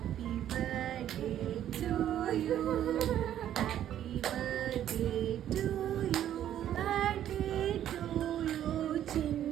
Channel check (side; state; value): left; quieter; 11.1 dB